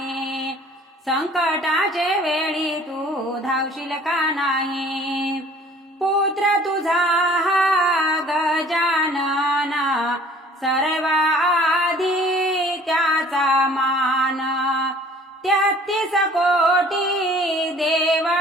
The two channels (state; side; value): normal; both; correlation 0.51